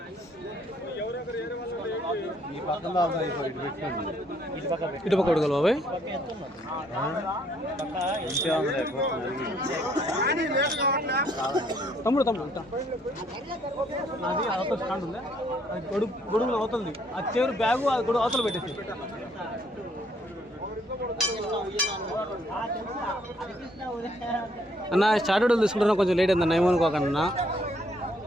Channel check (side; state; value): both; normal; correlation 0.67